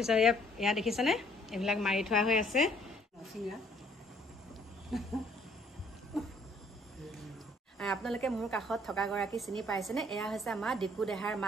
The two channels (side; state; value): both; normal; correlation 0.62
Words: ইয়াত দেখিছেনে এইবিলাক মাৰি থোৱা হৈ আছে আপোনালোকে মোৰ কাষত থকা গৰাকী চিনি পাইছেনে এয়া হৈছে আমাৰ ডিকু দেহাৰ